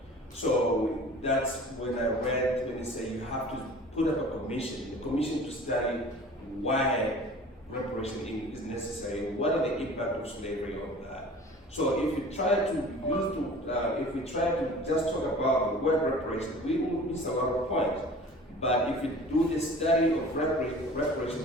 So that's when I read when they say you have to put up a commission to study why reparation is necessary, what are the impact of slavery on that. So if you try to just talk about the word reparation, we will miss a lot of points. But if you do the study of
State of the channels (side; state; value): both; normal; correlation 0.44